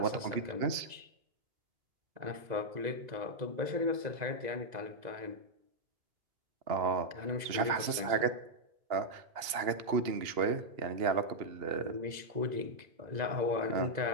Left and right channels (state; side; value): late; left; 2.8 ms